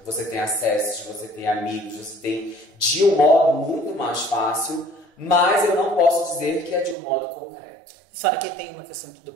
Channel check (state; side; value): drops out; left; at 7.0 s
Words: Você tem acessos, você tem amigos, você tem de um modo muito mais fácil. Mas eu não posso dizer que é de um modo concreto. Fora que tem uma questão do